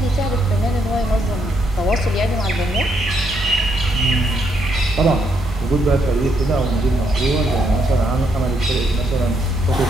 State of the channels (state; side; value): normal; both; correlation 0.76